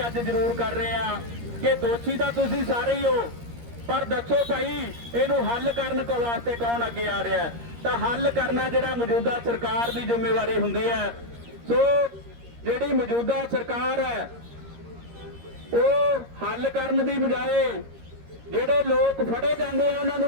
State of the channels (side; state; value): left; late; 13 ms